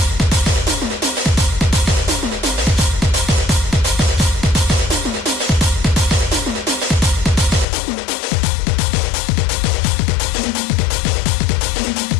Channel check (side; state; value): right; drops out; at 7.7 s